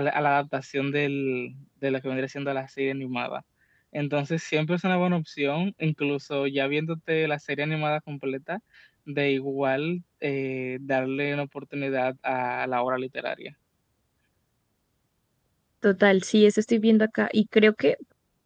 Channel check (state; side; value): identical; both; correlation 1.00